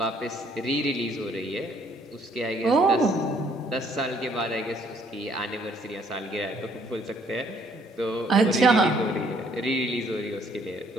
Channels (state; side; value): normal; both; correlation 0.64